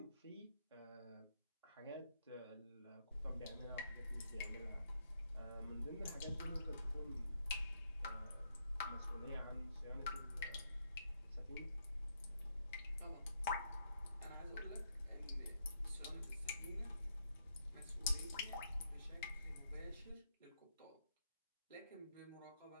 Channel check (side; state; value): both; inverted; correlation -0.78